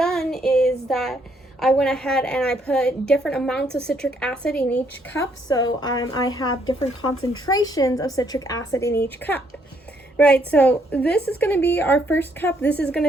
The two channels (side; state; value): both; normal; correlation 0.70